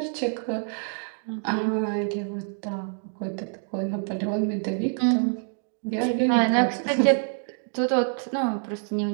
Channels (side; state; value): left; silent; 57 dB below the other